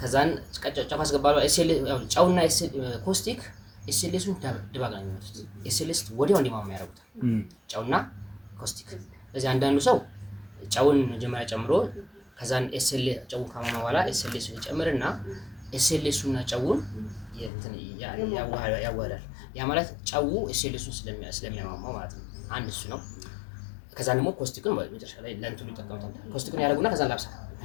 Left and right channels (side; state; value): right; drops out; at 17.5 s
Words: ከዛን ጨው ያስገባል። ጨውና ኮስቲክ ኤስኤልኤሱን ድባቅ ነው የሚመጡት። ኤስኤልኤስ ወዲያው እንዲማማ ያደርጉታል ጨውና ኮስቲክ። ስለዚህ አንዳንዱ ሰው ጨውን መጀመሪያ ጨምሮ ከዛን ጨውን ካማማ በኋላ ኤስኤልኤሱን ይጨምርና ኤስኤልኤሱና ጨውን ያዋህዳል። ያ ማለት ጨው ኤስኤልኤሱን ስለሚያማማው ማለት ነው። አንድ እሱ ነው። ከዛ ደግሞ ኮስቲክን መጨረሻ ላይ ለእንትኑ ይጠቀሙታል። ኮስቲክን ያደርጉና ከዛ ላብሳ